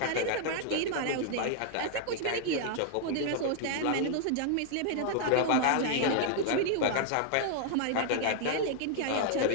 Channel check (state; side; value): different; both; correlation 0.00